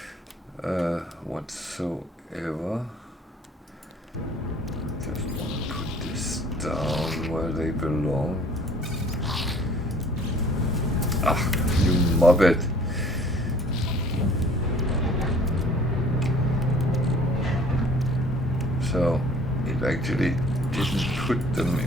whatsoever. Just want to put this down where they belong. Ah, you mobbit. So it actually didn't put them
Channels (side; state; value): both; normal; correlation 0.53